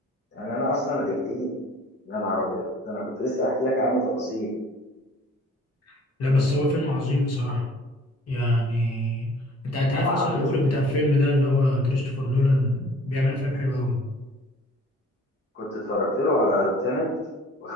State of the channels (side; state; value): both; normal; correlation 0.52